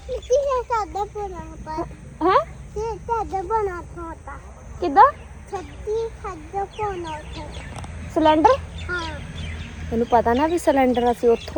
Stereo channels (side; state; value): both; identical; correlation 1.00